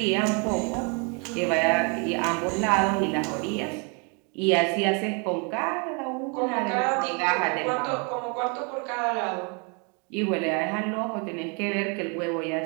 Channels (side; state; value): left; quieter; 34.5 dB